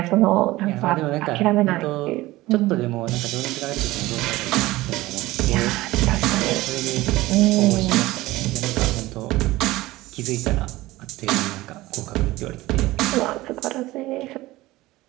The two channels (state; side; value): quieter; left; 18.4 dB